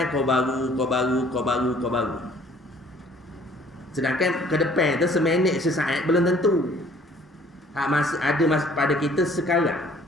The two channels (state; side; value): normal; both; correlation 0.57